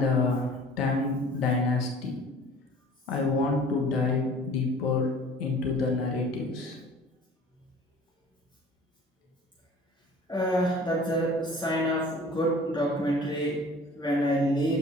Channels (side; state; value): both; normal; correlation 0.47